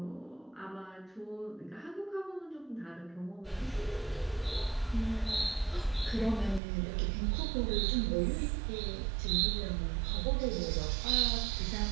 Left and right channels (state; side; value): drops out; left; at 6.6 s